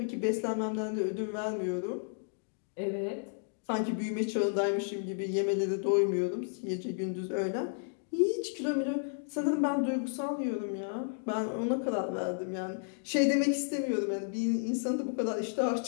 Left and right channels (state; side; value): silent; right; digital silence